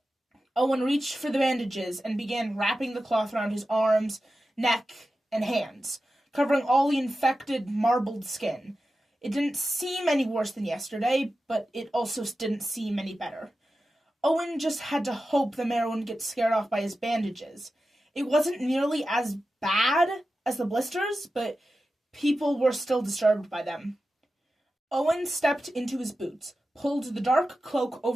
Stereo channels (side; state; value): both; normal; correlation 0.92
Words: Owen reached for the bandages and began wrapping the cloth around his arms, neck, and hands, covering all the infected, marbled skin. It didn't seem any worse than yesterday, but it also didn't seem any better. Owen just had to hope the mayor wouldn't get scared off by his bandages. It wasn't nearly as bad as the blisters, but people were still disturbed by them. Owen stepped into his boots, pulled the dark cloak